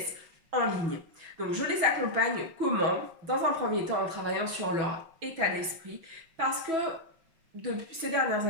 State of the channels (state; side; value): late; left; 6.2 ms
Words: en ligne. Donc, je les accompagne comment? Dans un premier temps, en travaillant sur leur état d'esprit parce que depuis ces dernières